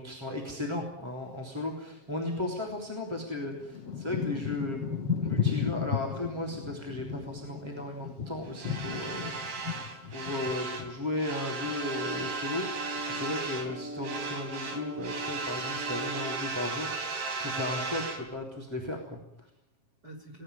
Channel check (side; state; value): left; late; 7.4 ms